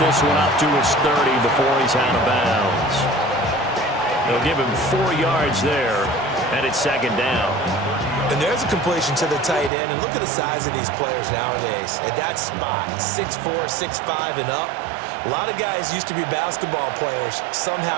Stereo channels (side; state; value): left; drops out; at 9.7 s